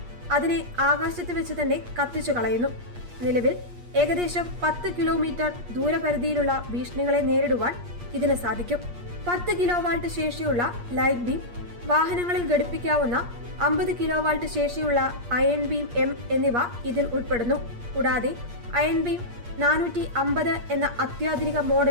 അതിനെ ആകാശത്ത് വെച്ച് തന്നെ കത്തിച്ചു കളയുന്നു. നിലവിൽ ഏകദേശം 10 കിലോമീറ്റർ ദൂരപരിധിയിലുള്ള ഭീഷണികളെ നേരിടുവാൻ ഇതിന് സാധിക്കും. 10 കിലോവാൾട്ട് ശേഷിയുള്ള ലൈറ്റ് ബീം, വാഹനങ്ങളിൽ ഘടിപ്പിക്കാവുന്ന 50 കിലോവാൾട്ട് ശേഷിയുള്ള അയൺ ബീം M എന്നിവ ഇതിൽ ഉൾപ്പെടുന്നു. കൂടാതെ അയൺ ബീം 450 എന്ന അത്യാധുനിക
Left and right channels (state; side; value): late; left; 8.5 ms